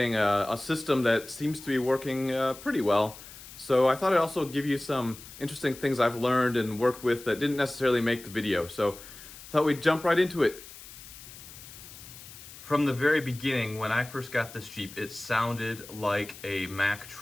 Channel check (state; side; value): noise; left; hiss, 16 dB below the sound